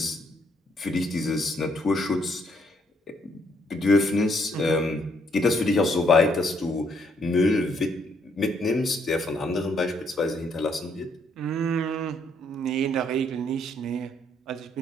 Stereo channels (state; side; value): normal; both; correlation 0.70